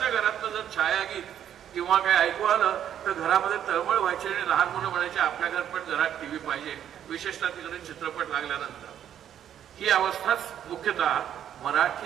घरातलं जर छायागीत किंवा काय ऐकू आलं तर घरामध्ये तळमळ व्हायची आणि लहान मुलं म्हणायचे आपल्या घरात पण घरात टीव्ही पाहिजे, विशेषतः तिकडे चित्रपट लागल्यानंतर. ही अवस्थाच मुख्यतः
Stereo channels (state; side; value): quieter; left; 10.0 dB